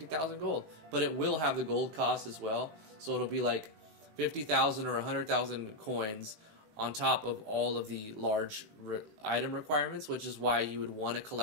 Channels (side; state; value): left; late; 19 ms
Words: gold, but it will have the gold cost as well. So it'll be like 50,000 or 100,000 coins on top of all of the large item requirements, which is why you would want to